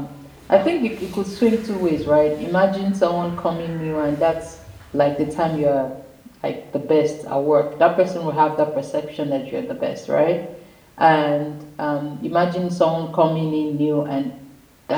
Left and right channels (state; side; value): identical; both; correlation 1.00